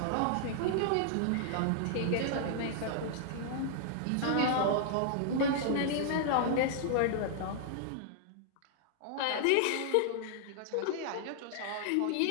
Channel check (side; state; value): both; different; correlation -0.01